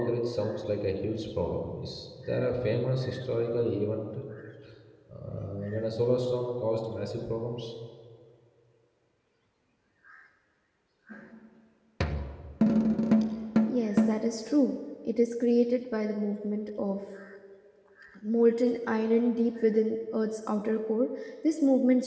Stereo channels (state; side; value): identical; both; correlation 1.00